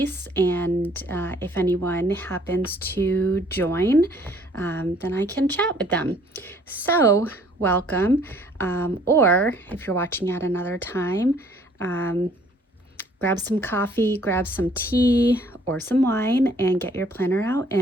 And if anyone happens to join, then I can chat with them. So welcome. Or if you're watching at another time, grab some coffee, grab some tea or some wine, and get your planner out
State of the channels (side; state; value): both; normal; correlation 0.59